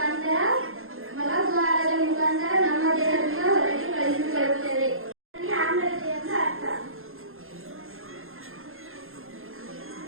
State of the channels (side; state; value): left; late; 0.61 ms